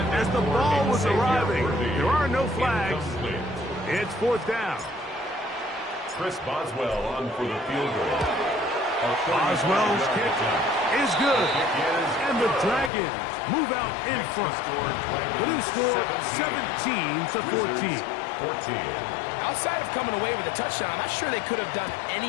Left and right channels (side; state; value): right; drops out; at 12.9 s